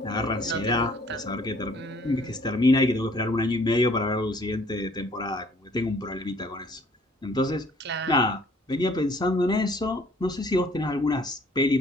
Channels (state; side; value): normal; both; correlation 0.58